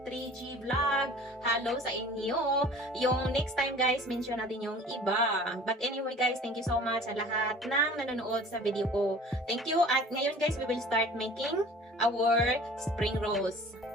Vlog. Hello sa inyo. Yung next time guys, mention natin yung iba. But anyway guys, thank you so much sa lahat ng nanonood sa video ko. Thank you. At ngayon guys, we will start making our spring rolls.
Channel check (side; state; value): both; normal; correlation 0.46